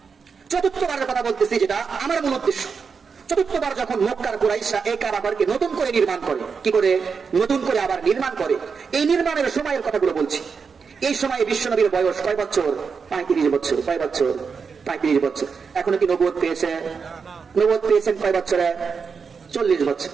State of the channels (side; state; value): left; quieter; 5.6 dB